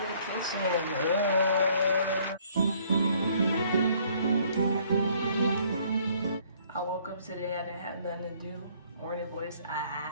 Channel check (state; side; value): inverted; both; correlation -0.62